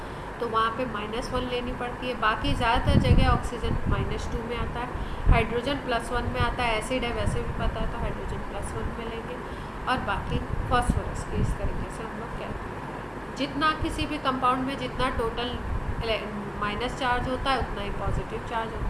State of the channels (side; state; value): both; identical; correlation 1.00